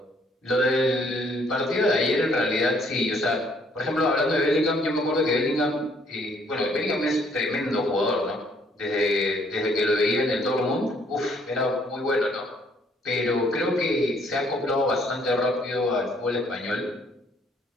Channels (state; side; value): normal; both; correlation 0.65